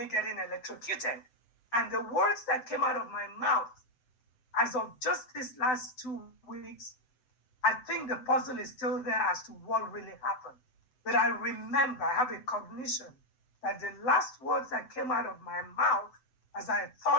getting electrocuted. And the words that came out of my mouth, as of just these last 2 weeks, I think the puzzle is still there as to what really happened. But I remember, I have a cognition that the last words that came out of my mouth as I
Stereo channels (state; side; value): late; right; 7.8 ms